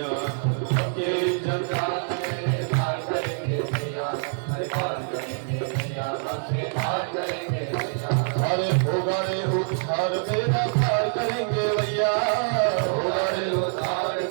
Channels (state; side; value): silent; left; 61 dB below the other